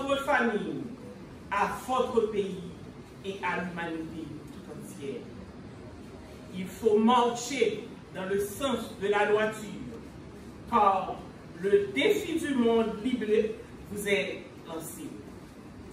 famille, à votre pays et à l'humanité tout entière. Il faut marcher dans le sens de la droiture, car le défi du monde biblique vous est lancé.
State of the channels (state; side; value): identical; both; correlation 1.00